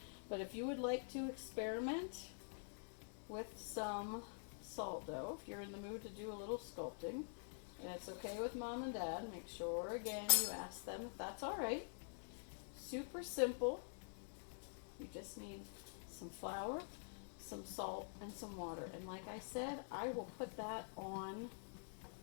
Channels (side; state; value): right; silent; digital silence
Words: But if you would like to experiment with some salt dough, if you're in the mood to do a little sculpting, and it's okay with Mom and Dad, make sure again you ask them if that's alright. Super simple. You just need some flour, some salt, and some water. And like I said, I will put that on